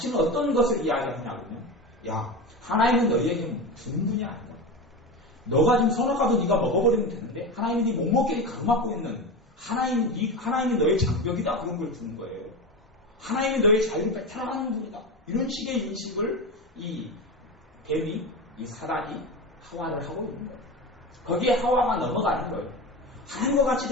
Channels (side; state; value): both; normal; correlation 0.23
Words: 어떤 것을 이야기하냐면요. 야, 하나님은 너희에게 주는 분이 아니다. 너가 지금 선악과도 네가 먹어버리면 되는데 하나님이 네 목목끼리 가로막고 있는 하나님이 너의 장벽이다 그런 걸 주는 거예요. 하나님이 너의 자유를 뺏어나가는 분이다. 이런 식의 인식을 이 뱀이 이 사단이 하와를 하고 있는 거예요. 거기에 하와가 넘어가는 거예요. 하나님과 같이